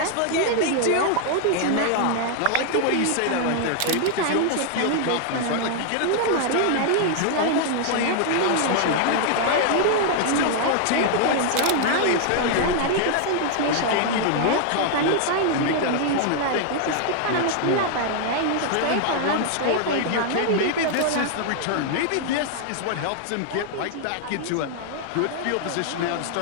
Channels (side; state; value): both; different; correlation -0.01